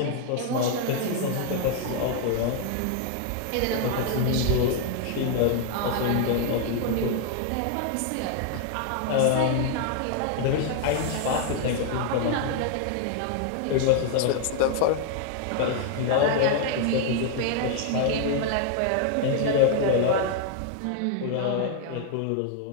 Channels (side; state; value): both; different; correlation 0.00